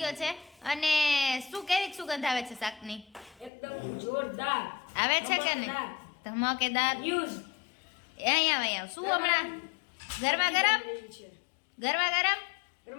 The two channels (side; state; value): right; drops out; at 3.5 s